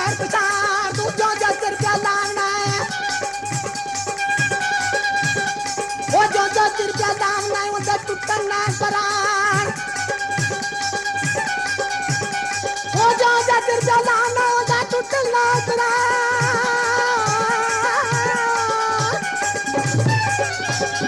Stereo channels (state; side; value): identical; both; correlation 1.00